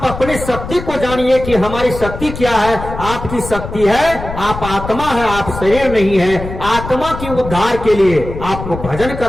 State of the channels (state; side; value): noise; left; rumble, 9 dB below the sound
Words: अपनी शक्ति को जानिए कि हमारी शक्ति क्या है। आपकी शक्ति है, आप आत्मा है, आप शरीर नहीं है। आत्मा की उद्धार के लिए आपको भजन